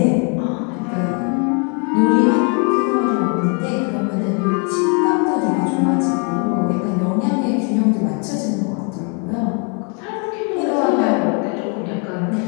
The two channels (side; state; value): right; quieter; 37.1 dB